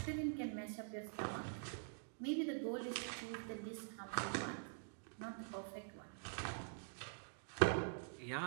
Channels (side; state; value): left; silent; digital silence